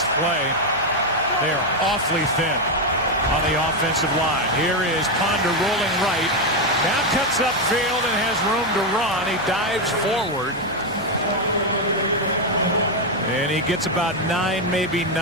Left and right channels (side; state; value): left; noise; hum, 22 dB below the sound